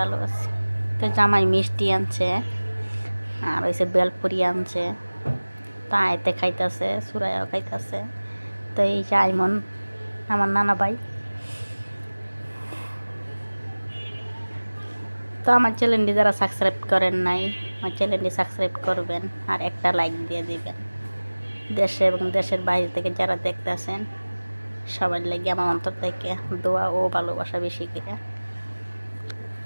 আছি। তো জামাই মিষ্টি আনছে আর হয়েছে বেলপুরি আনছে, তা এতে খাইতেছে, সুরাইয়াও খাইতেছে। তো এই যে আইমন আমার নানা ভাই। তো আমার চ্যানেলটি যারা সাবস্ক্রাইব করেন নাই, আমার চ্যানেলটি সাবস্ক্রাইব করবেন আর একটা লাইক দিয়ে দিবেন। দেশে এবং দেশের বাইরে থেকে যারা দেখতেছেন সবার লাগে আমার অন্তর থেকে দোয়া ও ভালোবাসা বেশি করে।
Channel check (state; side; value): inverted; both; correlation -1.00